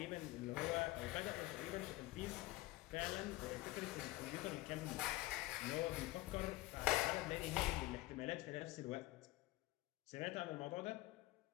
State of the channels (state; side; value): quieter; right; 18.4 dB